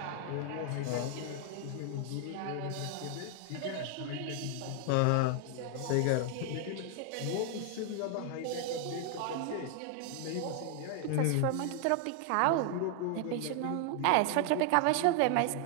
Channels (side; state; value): both; different; correlation 0.00